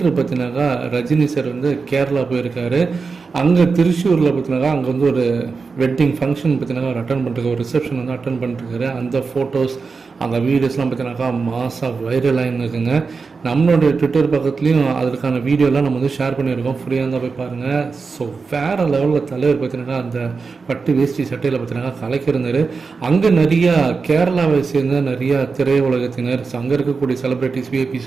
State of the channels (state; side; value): quieter; left; 4.7 dB